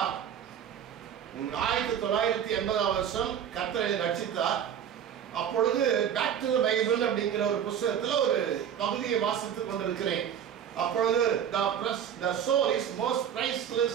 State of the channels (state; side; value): quieter; left; 9.0 dB